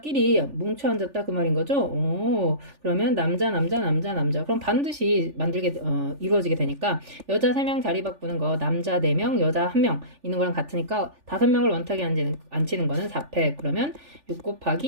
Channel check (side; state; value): left; late; 3.4 ms